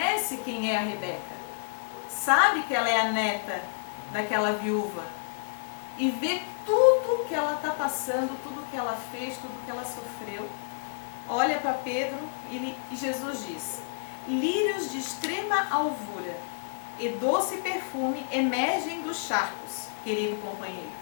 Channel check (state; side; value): silent; right; 58 dB below the other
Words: quem é a Rebeca. Sabe que ela é a neta daquela viúva. E vê tudo que ela está passando, tudo que ela fez, tudo que ela sofreu. Olha para Pedro e Jesus diz: lírios de extrema alvura e doce perfume emergem dos charcos, querido companheiro.